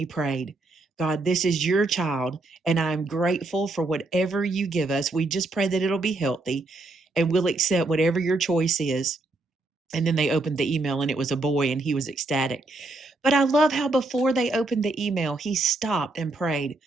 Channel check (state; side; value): quieter; left; 3.1 dB